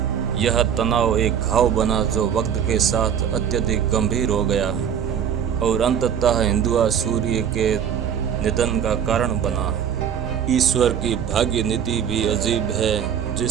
यह तनाव एक घाव बना जो वक्त के साथ अत्यधिक गंभीर हो गया और अंततः हिंदुआ सूर्य के निधन का कारण बना। ईश्वर की भाग्य नीति भी अजीब है।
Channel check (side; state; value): left; quieter; 8.5 dB